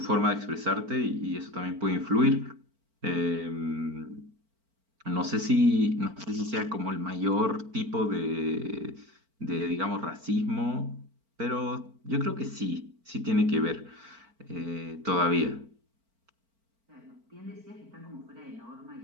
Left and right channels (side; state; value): left; late; 4.4 ms